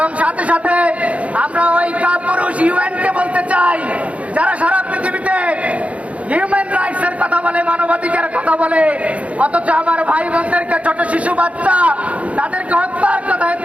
সাথে সাথে আমরা ওই কাপুরুষ ইউএনকে বলতে চাই, যারা সারা পৃথিবীতে হিউম্যান রাইটস এর কথা বলে, মানবাধিকারের কথা বলে, অথচ আমার ভাই বোনদেরকে, ছোট শিশু বাচ্চা, তাদেরকে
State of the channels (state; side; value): late; left; 0.064 ms